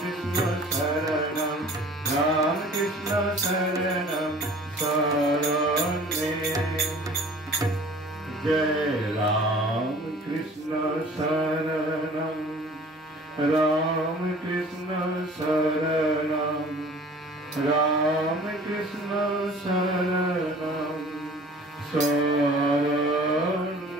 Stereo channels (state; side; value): normal; both; correlation 0.47